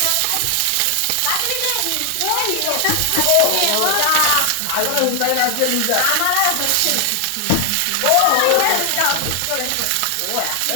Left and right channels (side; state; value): both; different; correlation 0.00